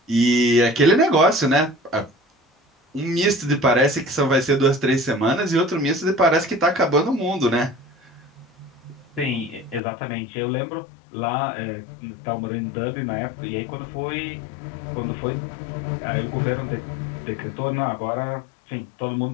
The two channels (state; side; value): drops out; right; at 9.8 s